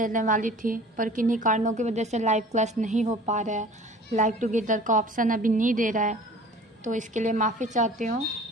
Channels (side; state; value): both; normal; correlation 0.45